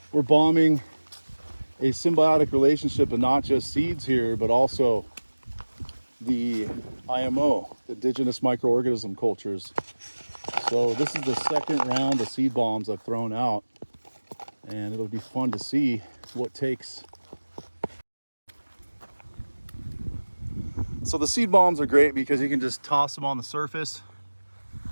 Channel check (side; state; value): both; inverted; correlation -1.00